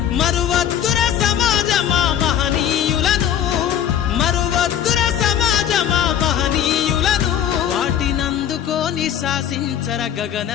మరువద్దుర సమాజమా మహనీయులను మరువద్దుర సమాజమా మహనీయులను వాటినందుకోని శాసించర గగన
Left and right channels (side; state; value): right; quieter; 9.9 dB